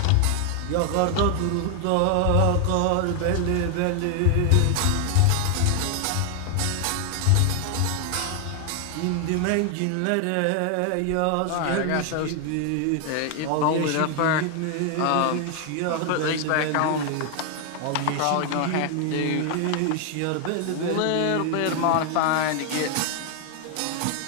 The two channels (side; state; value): both; different; correlation 0.00